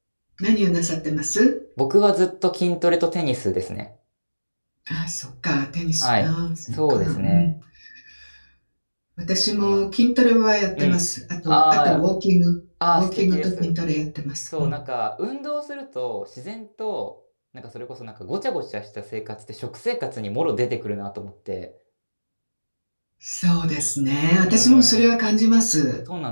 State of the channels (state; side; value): inverted; both; correlation -1.00